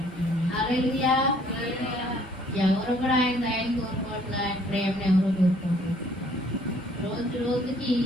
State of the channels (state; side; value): normal; both; correlation 0.60